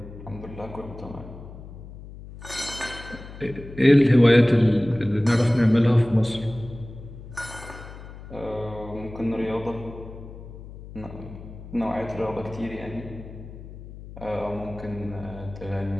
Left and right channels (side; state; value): left; noise; hum, 14 dB below the sound